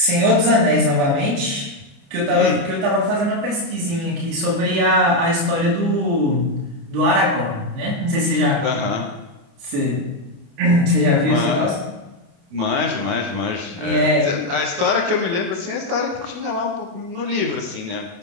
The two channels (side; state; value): left; late; 29 ms